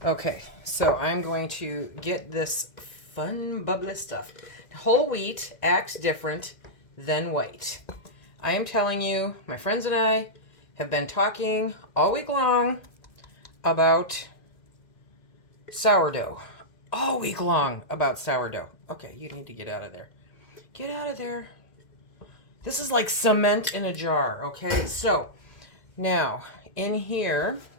Okay, so I'm going to get this fun, bubbly stuff. Whole wheat acts different than white. I am telling you, my friends and I have been talking all week long about sourdough. All week long about sourdough. Okay, you need to get out of there. Get out of there. This is like cement in a jar, okay? So now in here,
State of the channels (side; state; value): right; late; 2.1 ms